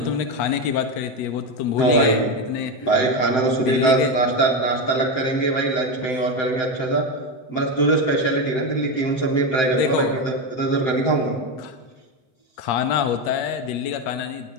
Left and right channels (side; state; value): right; late; 8.4 ms